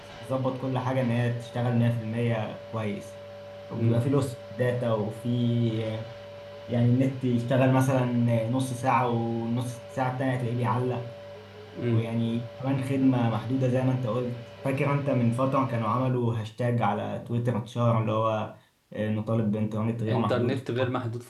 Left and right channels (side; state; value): both; identical; correlation 1.00